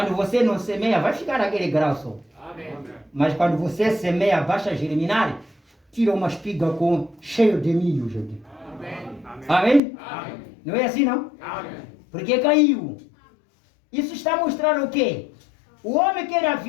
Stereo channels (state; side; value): drops out; right; at 9.8 s